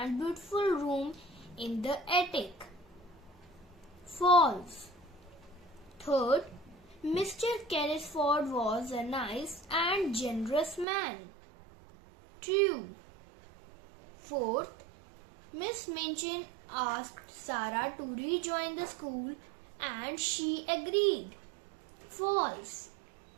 beautiful room in the attic. False. Third, Mr. Carrisford was a nice and generous man. True. Fourth, Miss Minchin asked Sarah to rejoin the school and she agreed. False.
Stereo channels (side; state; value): left; drops out; at 10.9 s